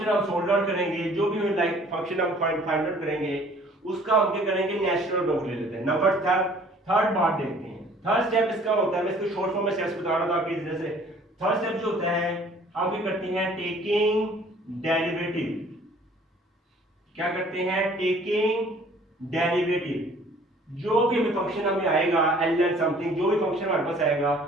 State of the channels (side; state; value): both; normal; correlation 0.54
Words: हम सोल्व आउट करेंगे, जो भी फंक्शन हम फाइंड आउट करेंगे उसका हम क्या करेंगे, नेचुरल लॉग ले लेते हैं। नंबर थर्ड पार्ट देखते हैं। थर्ड स्टेप इसका होता है, मैं इसको शॉर्ट फॉर्म में स्टेप्स बता रहा था आपकी वजह से। थर्ड स्टेप जो होता है हम क्या करते हैं, टेकिंग डेरिवेटिव। क्या करते हैं, टेकिंग डेरिवेटिव। जो भी हमें फंक्शन हमें आएगा ln समथिंग, जो भी फंक्शन हमारे पास आएगा,